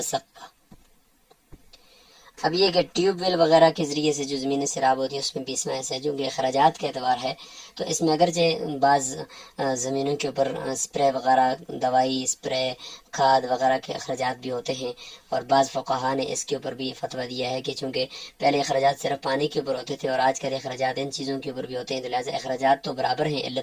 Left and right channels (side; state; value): both; identical; correlation 1.00